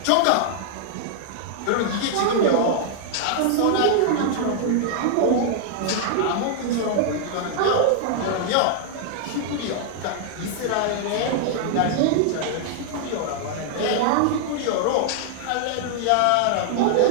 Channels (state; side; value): different; both; correlation -0.01